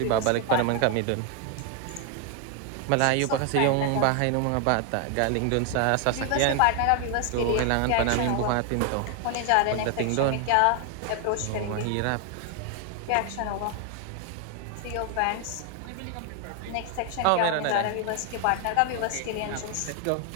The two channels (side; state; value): both; different; correlation 0.01